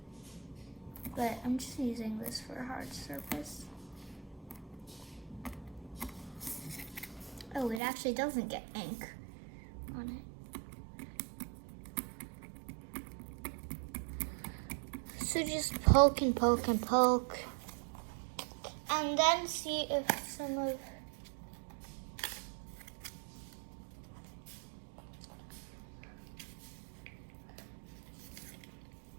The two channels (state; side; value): drops out; left; at 7.8 s